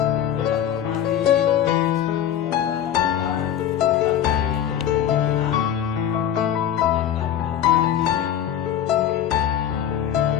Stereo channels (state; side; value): quieter; right; 10.1 dB